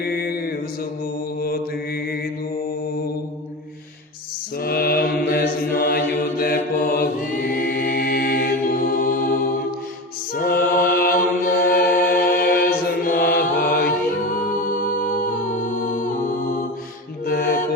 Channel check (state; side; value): normal; both; correlation 0.26